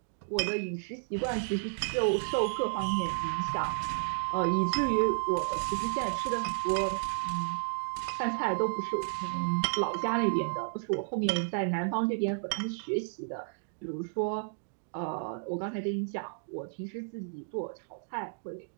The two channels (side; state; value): left; silent; digital silence